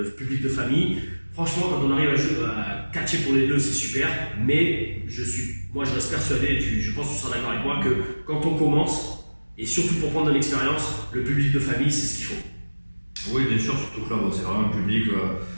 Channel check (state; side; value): inverted; both; correlation -1.00